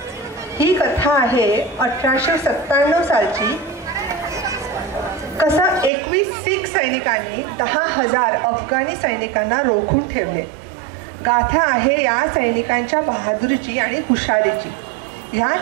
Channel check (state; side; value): drops out; left; at 5.9 s